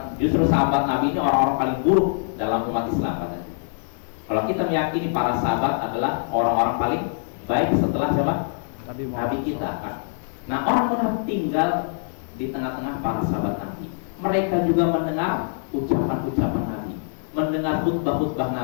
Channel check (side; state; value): right; silent; 63 dB below the other